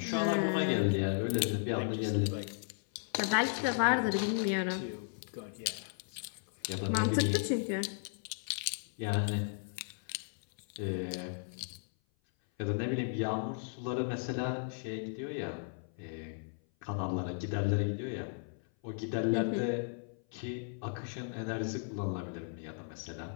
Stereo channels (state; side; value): silent; right; 54 dB below the other